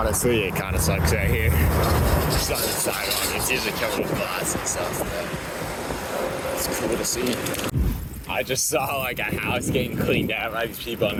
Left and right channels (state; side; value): identical; both; correlation 1.00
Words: it kind of sucks right here. Just on the sidewalk. It's usually covered with glass and stuff, but it's cool to see. I just saw like a house getting cleaned out by these people in